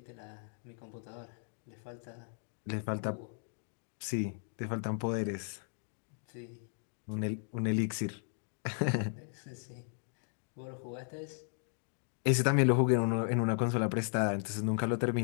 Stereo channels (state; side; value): silent; right; 54 dB below the other